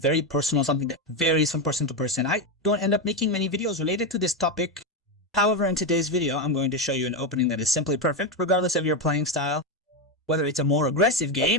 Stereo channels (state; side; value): normal; both; correlation 0.09